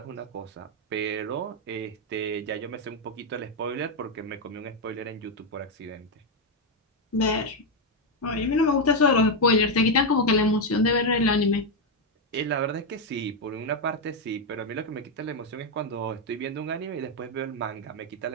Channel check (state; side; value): normal; both; correlation 0.04